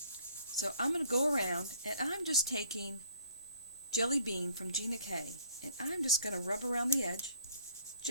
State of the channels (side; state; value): both; inverted; correlation -0.59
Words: I'm going to go around and I'm just taking Jelly Bean from Gina K, and I'm just going to rub around the edge